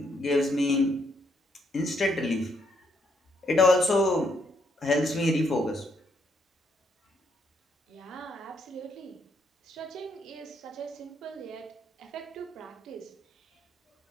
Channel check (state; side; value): normal; both; correlation 0.74